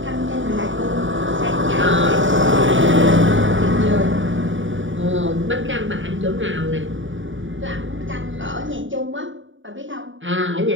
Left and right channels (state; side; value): late; left; 0.56 ms